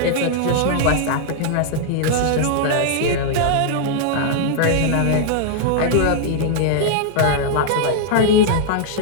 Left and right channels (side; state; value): both; different; correlation -0.01